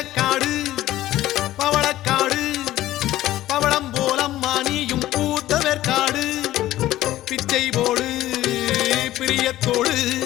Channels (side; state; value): right; quieter; 14.8 dB